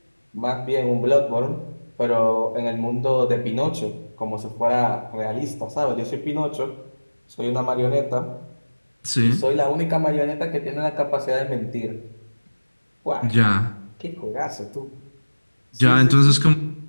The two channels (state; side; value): inverted; both; correlation -1.00